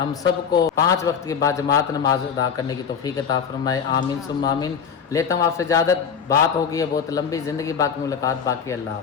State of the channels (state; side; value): quieter; right; 6.9 dB